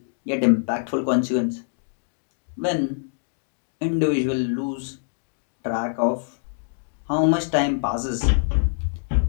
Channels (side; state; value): right; silent; digital silence